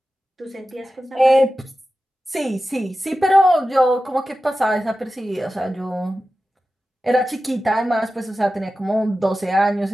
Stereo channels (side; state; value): both; normal; correlation 0.94